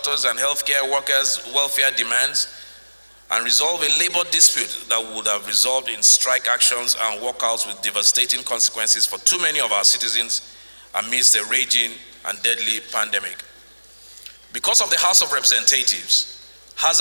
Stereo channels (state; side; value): inverted; both; correlation -1.00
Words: and healthcare workers' welfare demands and resolve a labor dispute that would have resolved in strike actions and walkouts with devastating consequences for too many of our citizens amidst a raging and deadly pandemic. Because of the House of Representatives,